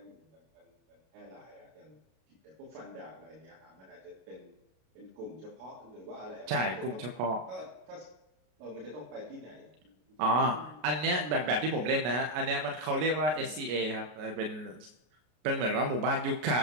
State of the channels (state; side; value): late; left; 33 ms